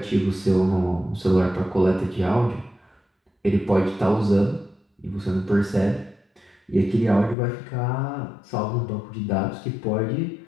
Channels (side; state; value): right; drops out; at 7.4 s